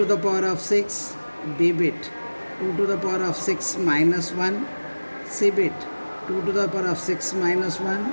the power of 6, B bit, 2 to the power of 6 minus 1, C bit, 2 to the power of 6 minus 1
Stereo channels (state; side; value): inverted; both; correlation -1.00